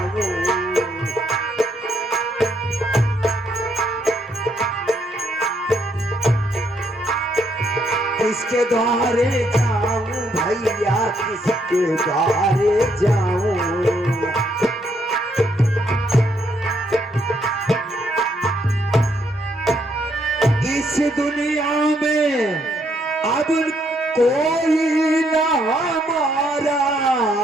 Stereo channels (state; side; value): normal; both; correlation 0.73